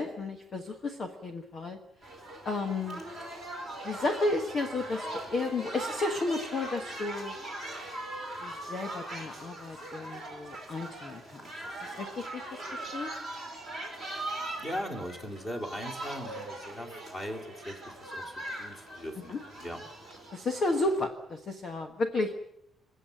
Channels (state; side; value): normal; both; correlation 0.70